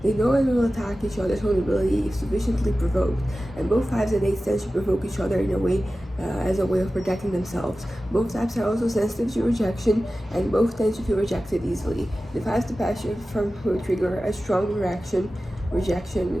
They know and will attack each other's vulnerability if sufficiently provoked, and both fives and eights tend to provoke each other in a way as a way of protecting themselves. Both types are also sensitive to rejection, and both tend to feel rejected easily. The fives departure from will trigger a strong reaction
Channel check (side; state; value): both; normal; correlation 0.95